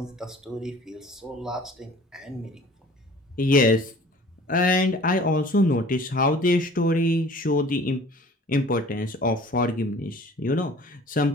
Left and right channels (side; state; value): both; normal; correlation 0.48